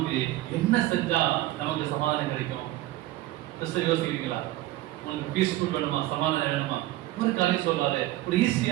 என்ன செஞ்சா நமக்கு சமாதானம் கிடைக்கும்? யோசிக்கிறீங்களா? உனக்கு பீஸ்ஃபுல் வேணுமா, சமாதானம் வேணுமா, ஒரு காரியம் சொல்றாரு, ஒரு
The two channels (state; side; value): quieter; left; 16.4 dB